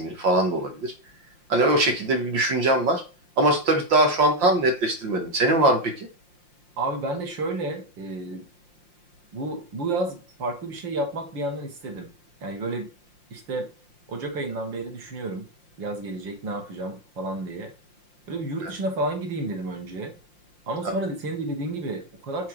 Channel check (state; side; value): late; left; 5.7 ms